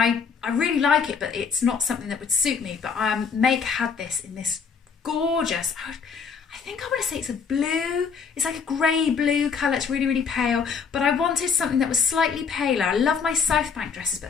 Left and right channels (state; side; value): quieter; right; 5.9 dB